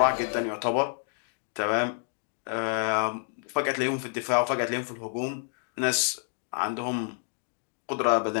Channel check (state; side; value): silent; right; 59 dB below the other